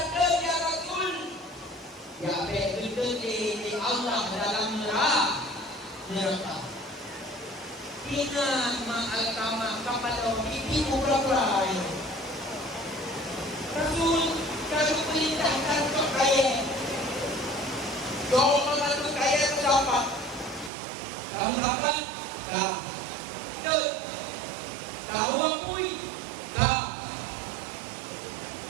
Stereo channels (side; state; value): left; drops out; at 20.7 s